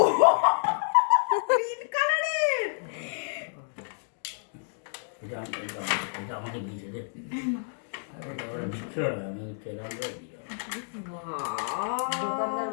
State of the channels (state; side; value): silent; right; digital silence